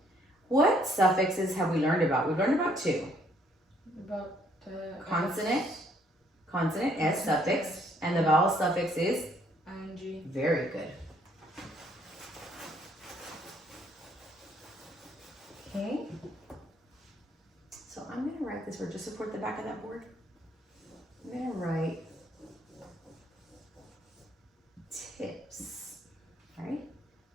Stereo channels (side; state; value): both; normal; correlation 0.66